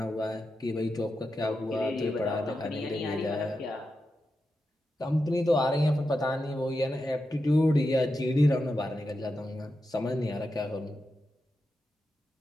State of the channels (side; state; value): both; normal; correlation 0.89